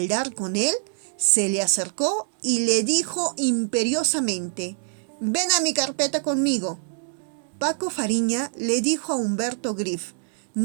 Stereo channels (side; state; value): left; silent; digital silence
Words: dar con él, se le acercó y le dijo imperiosamente: «Ven a mi carpeta conmigo». Paco Fariña le dijo a Humberto Griff: